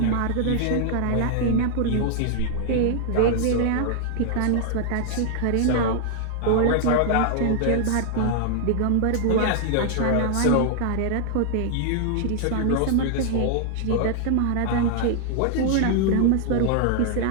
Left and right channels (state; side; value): different; both; correlation 0.00